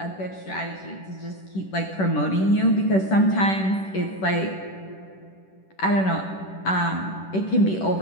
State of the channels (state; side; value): late; right; 10 ms